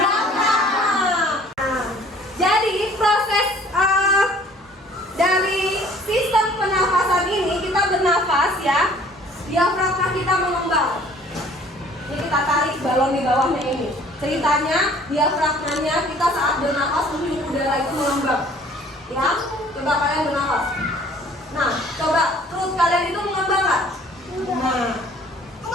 Jadi proses dari sistem pernafasan ini, kita bernafas ya, diafragma kita mengembang. Ini kita tarik balon di bawahnya ini. Ceritanya diafragmanya kita saat bernafas menghirup udara itu mengembang. Ya, coba kalian bernafas. Nah, coba perut kalian itu mengembang nggak? Nah,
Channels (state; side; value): normal; both; correlation 0.54